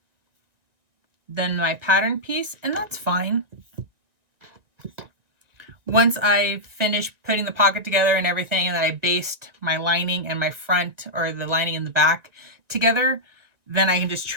than my pattern piece, and that's fine. Once I finish putting the pocket together and everything, and then I basted my lining and my front, or the lining in the back together, then I can just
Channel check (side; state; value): left; late; 1.9 ms